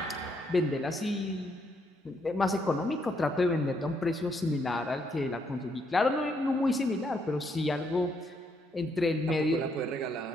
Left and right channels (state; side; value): normal; both; correlation 0.74